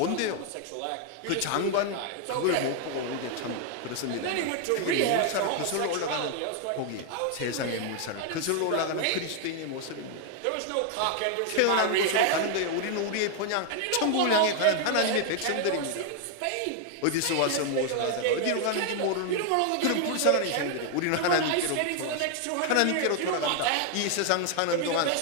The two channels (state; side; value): different; both; correlation 0.00